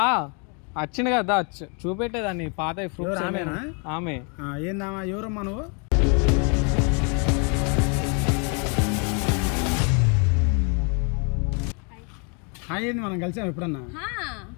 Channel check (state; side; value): quieter; right; 36.0 dB